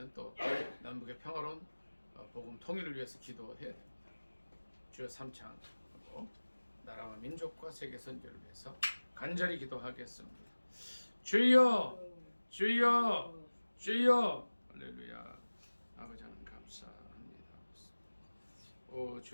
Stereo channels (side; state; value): both; inverted; correlation -1.00